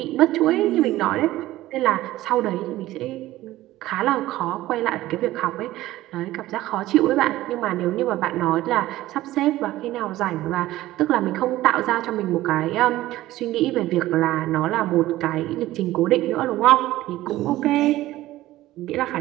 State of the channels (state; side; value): quieter; left; 16.0 dB